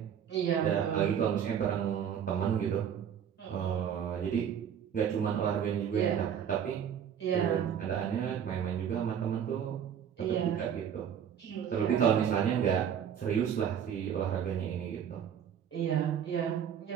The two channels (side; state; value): left; quieter; 8.5 dB